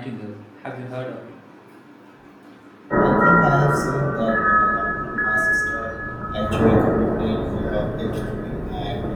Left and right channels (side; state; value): both; identical; correlation 1.00